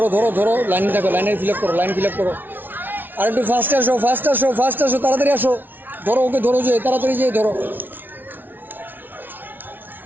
ধরো ধরো, লাইনে থাকো, লাইনে ফিল আপ করো, লাইন ফিল আপ করো। আর একটু ফাস্ট আসো, ফাস্ট আসো, ফাস্ট আসো, তাড়াতাড়ি আসো। ধরো ওকে, ধরো, যে তাড়াতাড়ি যেয়ে ধরো।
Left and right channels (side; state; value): left; late; 0.091 ms